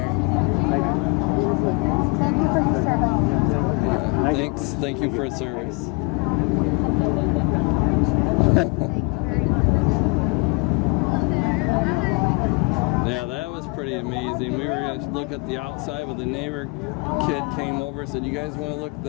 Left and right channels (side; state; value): right; quieter; 30.8 dB